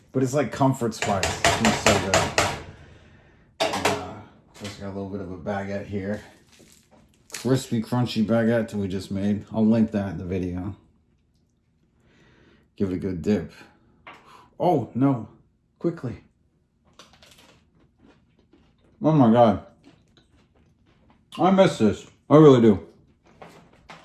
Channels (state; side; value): identical; both; correlation 1.00